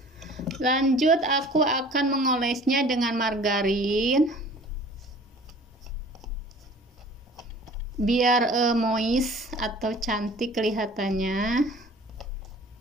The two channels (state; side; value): normal; both; correlation 0.48